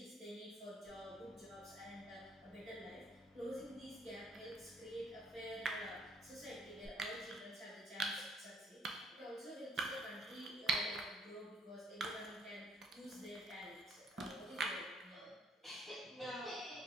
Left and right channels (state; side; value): normal; both; correlation 0.65